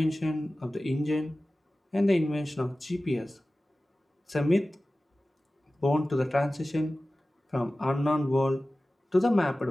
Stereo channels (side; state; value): both; normal; correlation 0.96